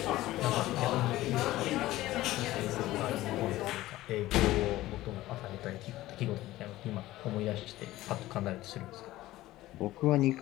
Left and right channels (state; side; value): quieter; right; 16.4 dB